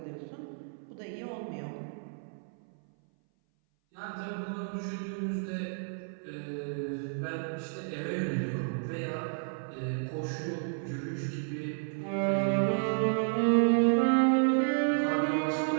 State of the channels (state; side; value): silent; left; 57 dB below the other